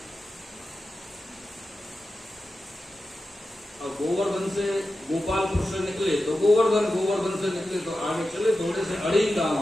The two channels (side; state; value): both; normal; correlation 0.92